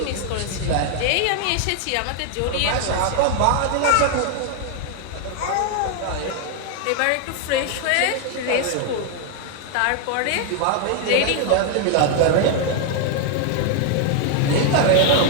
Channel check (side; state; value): both; different; correlation 0.00